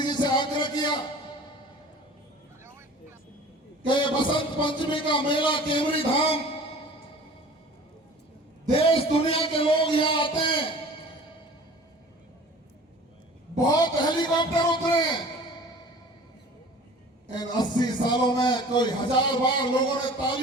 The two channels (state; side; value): normal; both; correlation 0.44